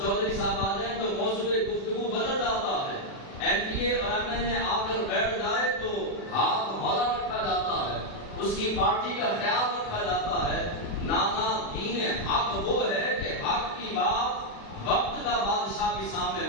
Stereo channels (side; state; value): right; late; 36 ms